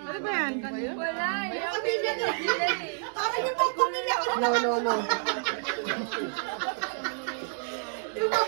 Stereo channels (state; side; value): silent; left; 59 dB below the other